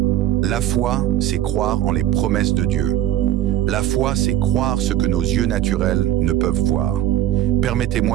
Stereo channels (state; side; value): quieter; left; 12.4 dB